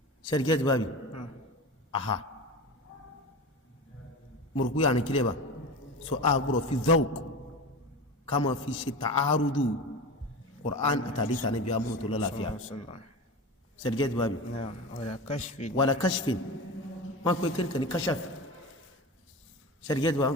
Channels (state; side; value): normal; both; correlation 0.28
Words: ṣẹ́rìkẹ́ bábi aha mọ̀rùkú yà ní kílẹ̀ bá so a gbọ́rọ̀ fi zawq ká ma fi ṣe ta'arudu Qur'an àtàdísà ní bí a mọ̀ tó lọ́láfíà ṣẹ́rìkẹ́ bábi wàlá kashfin wọ́n pẹ́ kíníkà ní kashaf ṣẹ́rìkẹ́ bá